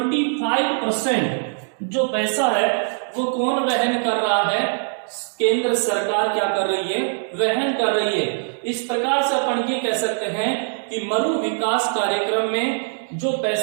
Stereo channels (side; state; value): left; silent; digital silence